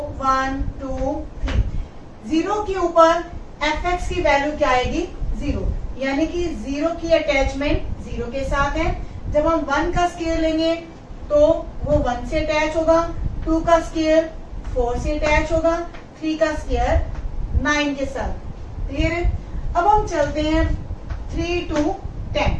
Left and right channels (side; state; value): both; identical; correlation 1.00